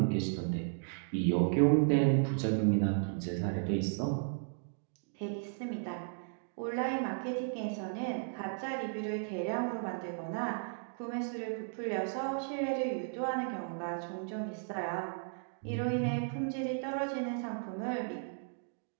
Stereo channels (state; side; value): silent; left; digital silence